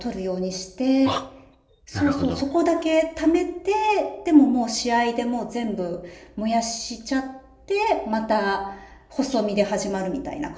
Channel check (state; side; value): identical; both; correlation 1.00